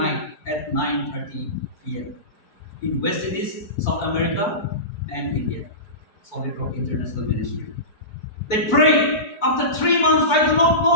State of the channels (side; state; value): right; late; 4.6 ms